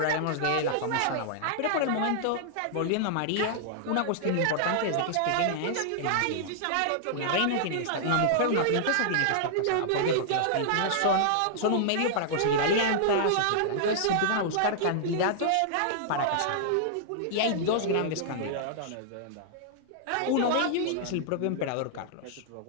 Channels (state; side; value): different; both; correlation -0.01